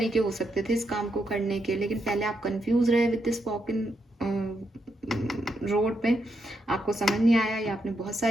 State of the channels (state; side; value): normal; both; correlation 0.81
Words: हो सकते थे इस काम को करने के, लेकिन पहले आप कंफ्यूज रहे with this walk in road पे, आपको समझ नहीं आया या आपने बहुत